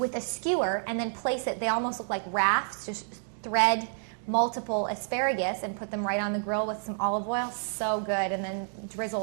a skewer and then place it, they almost look like rafts, just thread multiple asparagus and put them right on the grill with some olive oil. So good. And then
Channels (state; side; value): silent; left; digital silence